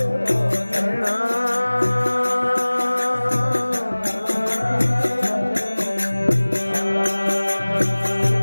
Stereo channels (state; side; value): inverted; both; correlation -1.00